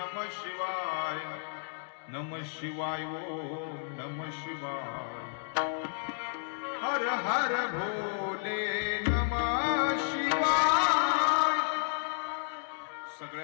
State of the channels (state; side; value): silent; right; digital silence